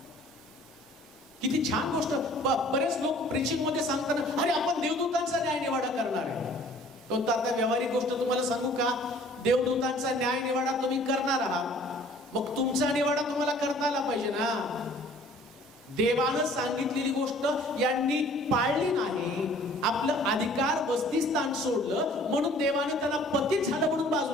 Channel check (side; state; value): both; normal; correlation 0.53